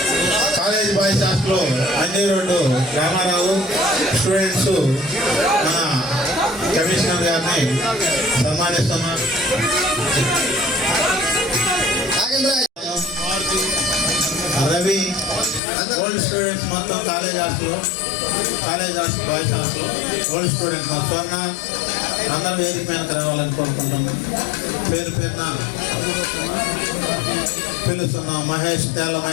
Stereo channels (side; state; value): right; drops out; at 15.6 s